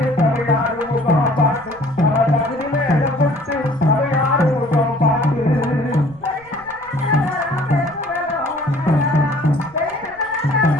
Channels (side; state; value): right; noise; rumble, 26 dB below the sound